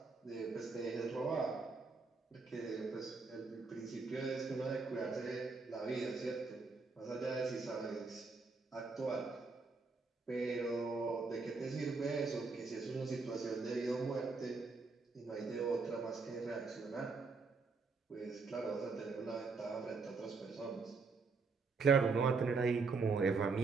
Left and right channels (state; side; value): quieter; left; 4.3 dB